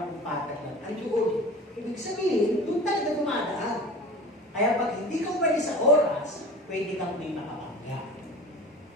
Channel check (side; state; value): both; normal; correlation 0.38